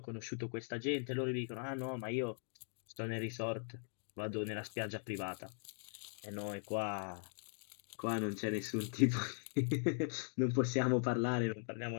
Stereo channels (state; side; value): silent; right; 51 dB below the other